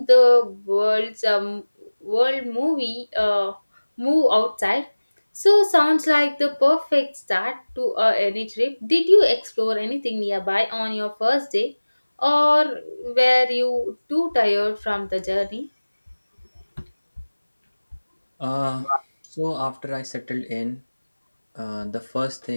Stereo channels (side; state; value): both; inverted; correlation -1.00